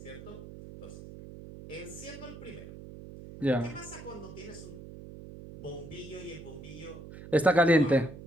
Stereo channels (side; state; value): right; noise; hum, 14 dB below the sound